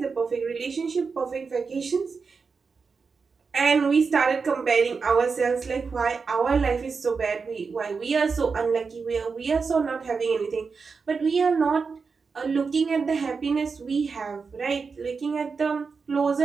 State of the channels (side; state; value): left; quieter; 5.0 dB